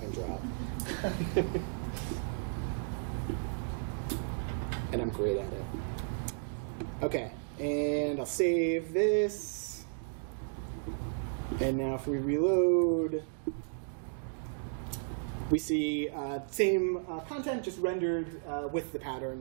and drop. And I'm great at it. Okay, and I'll save this. And now if we reload, we see same content just rendered with the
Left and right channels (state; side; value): silent; left; digital silence